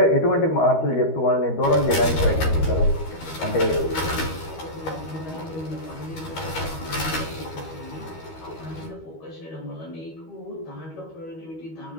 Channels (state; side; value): late; right; 13 ms